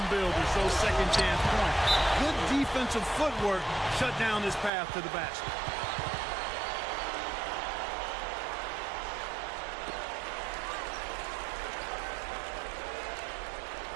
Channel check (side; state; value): left; drops out; at 4.7 s